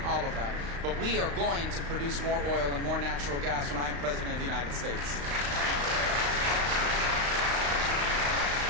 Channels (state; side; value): late; left; 35 ms